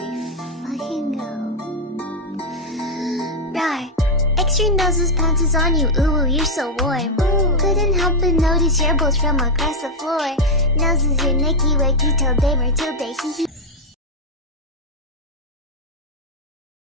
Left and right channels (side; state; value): both; normal; correlation 0.02